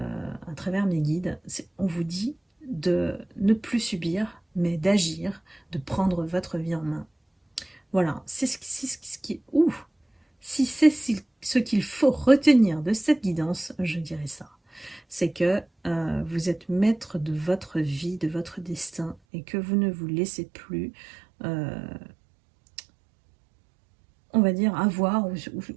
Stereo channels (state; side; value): drops out; left; at 19.2 s